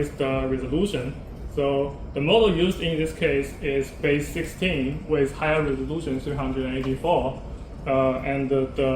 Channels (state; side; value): identical; both; correlation 1.00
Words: the resolution. So the model used in this case is base 16 with higher resolution 384. And